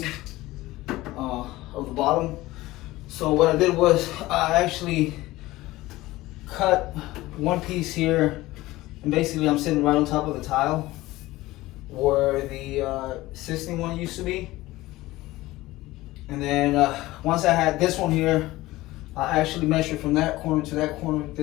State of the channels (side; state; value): right; quieter; 18.2 dB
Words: of the bottom. So what I did was I actually cut one piece here, and basically I'm sitting right on top of the tile where the existing one used to be. And then once I had this one here, I actually measured from that corner to that corner,